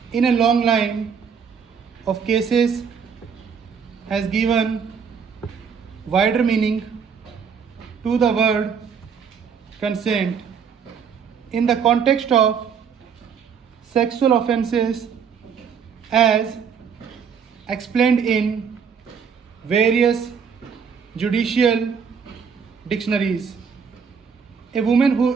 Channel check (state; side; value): quieter; left; 6.6 dB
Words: in a long line of cases, has given wider meaning to the word consent in the context of sexual offences as explained in various judicial dictionaries. A woman who